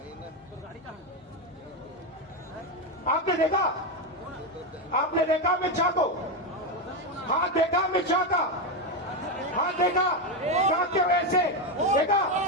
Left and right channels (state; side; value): normal; both; correlation 0.09